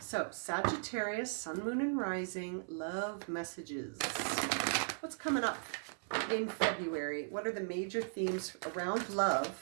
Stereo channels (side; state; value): left; silent; 53 dB below the other